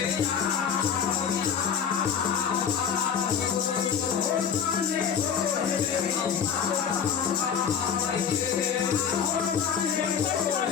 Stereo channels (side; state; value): right; quieter; 7.5 dB